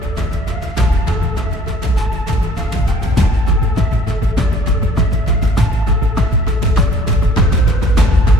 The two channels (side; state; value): both; normal; correlation 0.56